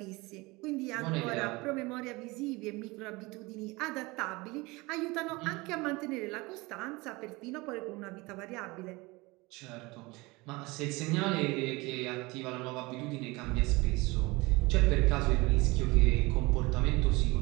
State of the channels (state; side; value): quieter; left; 23.5 dB